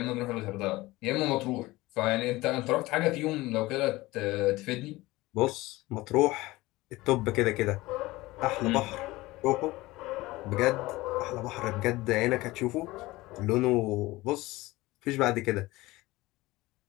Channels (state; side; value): quieter; right; 19.6 dB